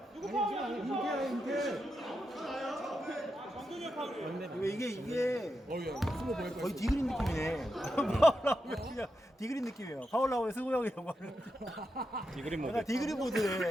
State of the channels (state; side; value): normal; both; correlation 0.86